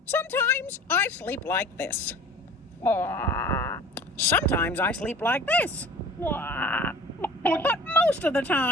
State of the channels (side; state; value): both; normal; correlation 0.43